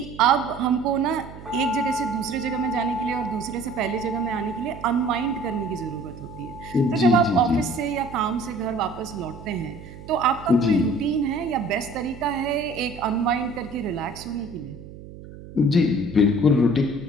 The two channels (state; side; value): noise; right; hum, 15 dB below the sound